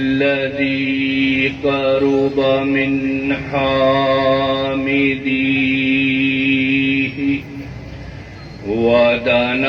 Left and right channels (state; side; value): identical; both; correlation 1.00